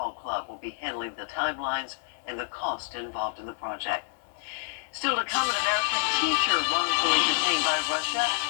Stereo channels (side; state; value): right; silent; digital silence